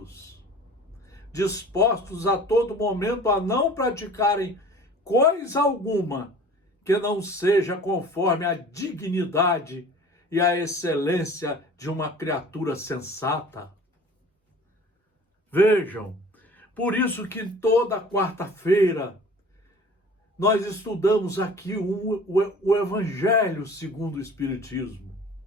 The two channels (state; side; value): normal; both; correlation 0.45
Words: dispostos a todo momento a não praticarem coisa alguma que não seja conforme a dignidade e a excelência de uma criatura sensata. Vejam, por isso que toda quarta-feira nós estudamos aqui o Evangelho segundo o Espiritismo.